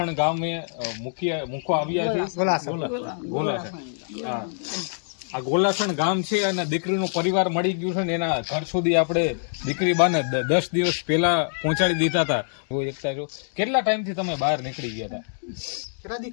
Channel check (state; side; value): silent; right; digital silence